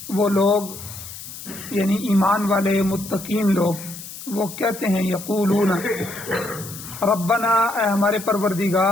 وہ لوگ یعنی ایمان والے متقین لوگ وہ کہتے ہیں یقولون ربنا، اے ہمارے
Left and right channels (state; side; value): noise; left; hiss, 12 dB below the sound